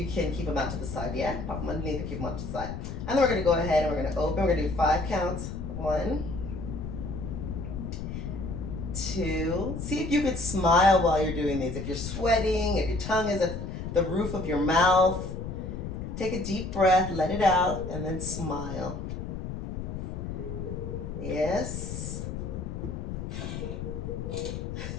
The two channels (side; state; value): left; noise; rumble, 6 dB below the sound